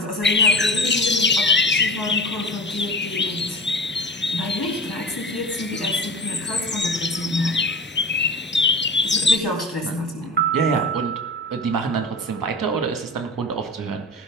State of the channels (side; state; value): both; normal; correlation 0.32